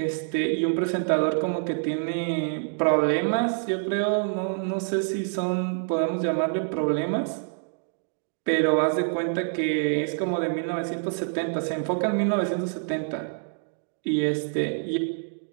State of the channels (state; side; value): silent; left; digital silence